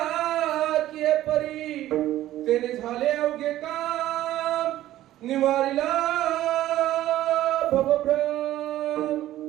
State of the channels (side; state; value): left; quieter; 14.0 dB